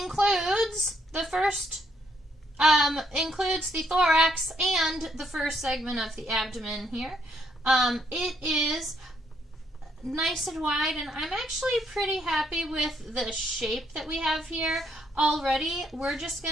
includes the thorax and the first segment of the abdomen here. It is nice and wide, and I'm actually pretty happy with the shape that we have here already. We're just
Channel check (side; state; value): both; normal; correlation 0.72